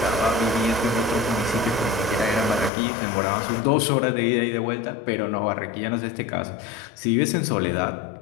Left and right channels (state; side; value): drops out; right; at 2.7 s